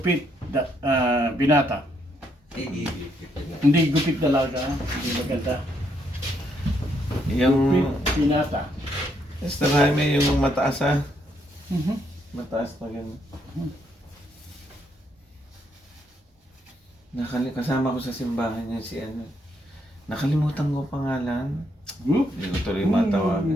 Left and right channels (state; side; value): normal; both; correlation 0.74